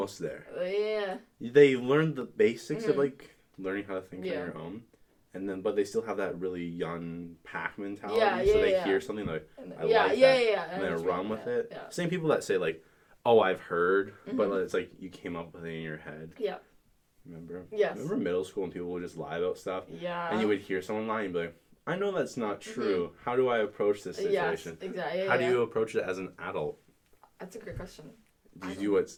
there. Yeah. They learned the basics of learning how to think on your own. And but they still have that really young pack mentality. So they hear something I like that. And then run with it. Yeah. Same people that say oh, I've heard, but it's you came up with it in your head. Yeah. Remember? Yes. Remember middle school when people would just lie about stuff? Yeah. And you would hear someone lie and be like, I know that's not true. How do I approach this situation? Yes, exactly. How do you approach it as an adult? That's a great question. Do you do what's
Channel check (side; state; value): both; identical; correlation 1.00